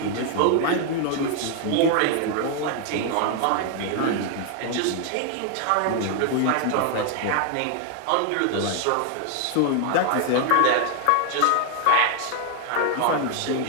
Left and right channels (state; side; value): different; both; correlation 0.00